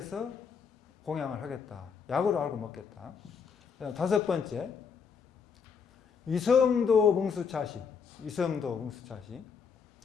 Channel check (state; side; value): quieter; right; 6.2 dB